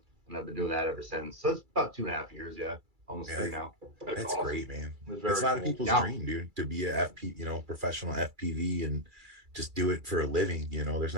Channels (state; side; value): late; left; 2.3 ms